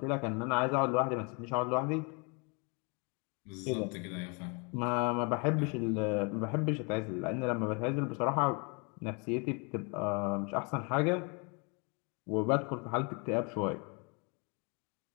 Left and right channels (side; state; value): right; quieter; 33.0 dB